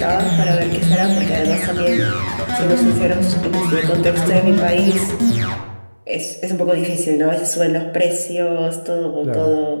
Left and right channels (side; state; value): both; inverted; correlation -1.00